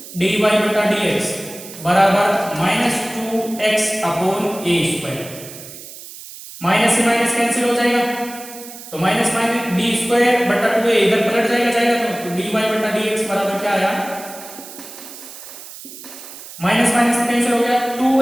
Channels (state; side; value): noise; right; hiss, 15 dB below the sound